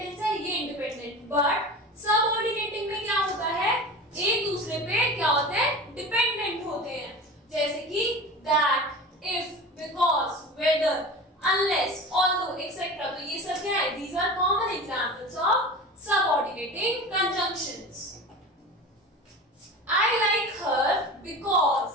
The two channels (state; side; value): normal; both; correlation 0.33